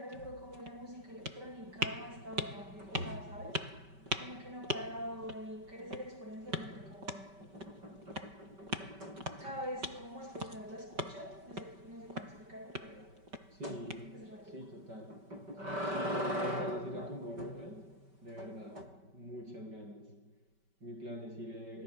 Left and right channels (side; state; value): left; late; 5.2 ms